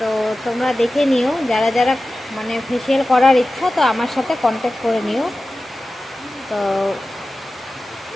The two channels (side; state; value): both; normal; correlation 0.95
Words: তোমরা দেখে নিও। যারা যারা মানে ফেসিয়াল করার ইচ্ছা, তো আমার সাথে কন্ট্যাক্ট করে নিও। তো